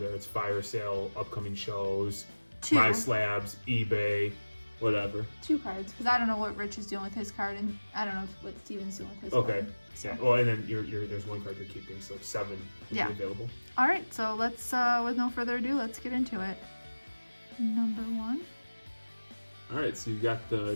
it's fire sale, upcoming shows, 2. My Slabs, eBay, whatever. 2 cards, because I don't know what Rich is doing with his card, and I don't know what Steven's doing with his Okay. card. So. Yeah. Well, and then there's 1 card you're keeping, so 7 will be available. All right, so let's, with no further ado, let's get into it. Number 1. All right, so you got the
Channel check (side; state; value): both; inverted; correlation -1.00